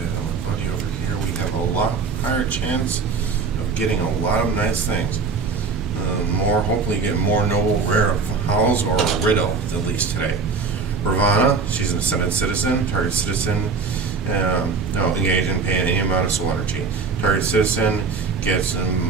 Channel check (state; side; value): quieter; left; 4.8 dB